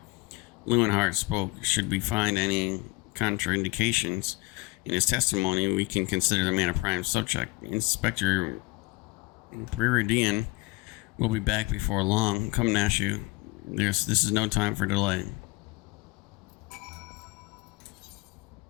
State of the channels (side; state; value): right; quieter; 23.6 dB